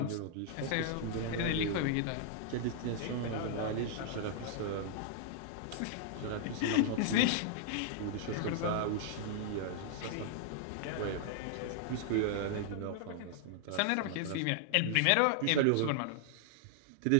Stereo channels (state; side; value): different; both; correlation -0.01